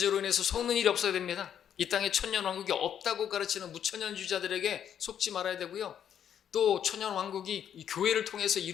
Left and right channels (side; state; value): right; quieter; 9.2 dB